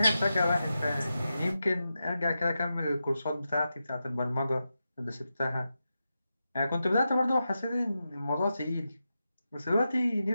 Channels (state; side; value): inverted; both; correlation -0.89